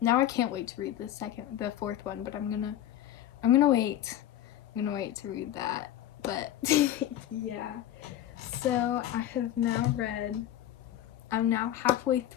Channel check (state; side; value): quieter; right; 12.2 dB